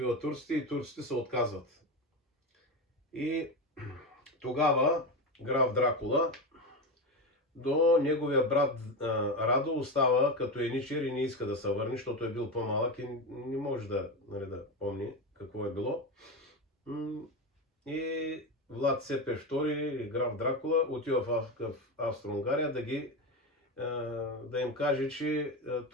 турците и турците се отказват. И тогава граф Дракула до неговия брат Радо остава като еничер и не иска да се върне, защото е бил по-малък и не може да помни какво е било. И Влад Цепеш II или граф Дракула отива в Австро-Унгария да им каже, че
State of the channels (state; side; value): normal; both; correlation 0.17